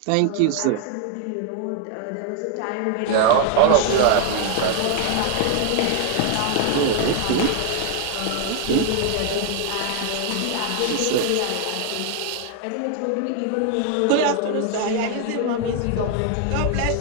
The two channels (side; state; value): both; different; correlation 0.00